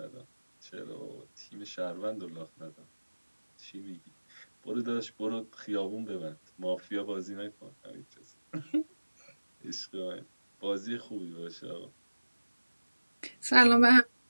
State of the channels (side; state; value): both; inverted; correlation -1.00